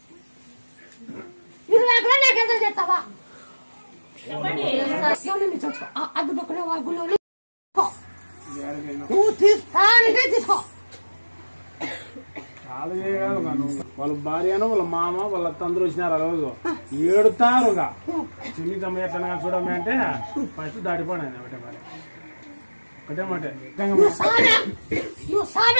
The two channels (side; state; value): both; inverted; correlation -1.00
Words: 20 కూడా నాకు ఎంత చేస్తావా. చూసుకో అడ్డు పక్కన గుళ్ళు నువ్వు తీసుకో. చాలా చేయగలరు కాను. వాళ్ళ భార్యను వాళ్ళ మామ వాళ్ళ అత్త అందరూ వచ్చినారు. ఆ రోజు ఏడుతారుగా చిన్ని తమ్మ ఎట్లా చూడమే అంటే ఫస్ట్ దాటిపోయినా ఒకటే మరి ఒకటే మాట